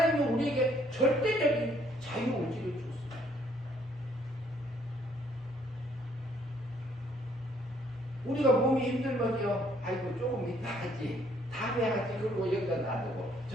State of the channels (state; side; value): normal; both; correlation 0.65